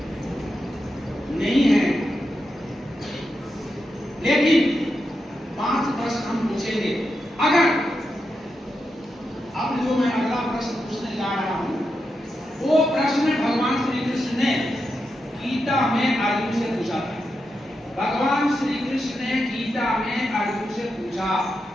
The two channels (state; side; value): normal; both; correlation 0.87